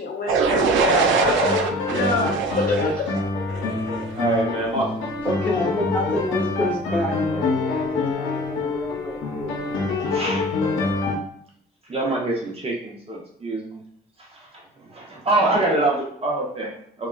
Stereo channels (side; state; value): both; normal; correlation 0.41